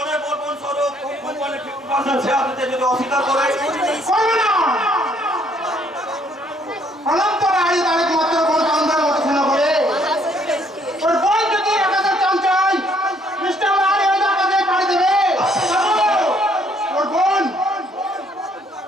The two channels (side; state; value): both; normal; correlation 0.66